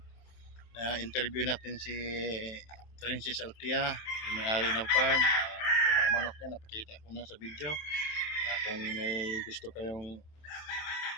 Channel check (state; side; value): late; right; 27 ms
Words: interview natin si Princess Altia, yung may-ari ng farm. Yung mga manok niya, napakita ko na sa video. Kung may gusto kayong